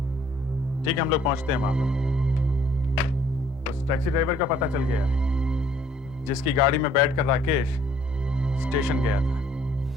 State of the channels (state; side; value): normal; both; correlation 0.61